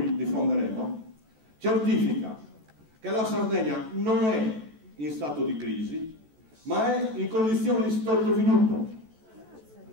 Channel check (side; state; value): left; late; 14 ms